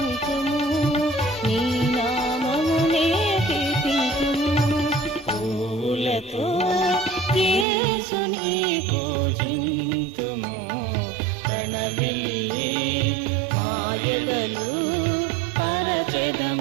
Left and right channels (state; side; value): drops out; left; at 7.7 s